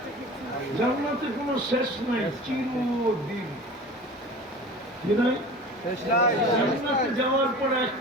জান্নাতে কোনো শেষ নাই, চিরদিন। কি নাই? জান্নাতে যাওয়ার পর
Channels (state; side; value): normal; both; correlation 0.38